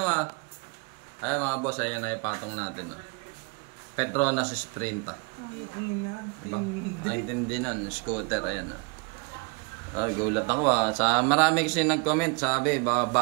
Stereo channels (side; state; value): left; quieter; 31.1 dB